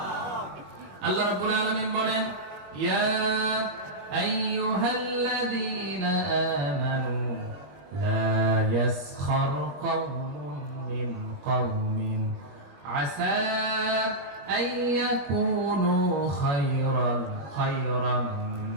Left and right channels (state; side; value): late; left; 21 ms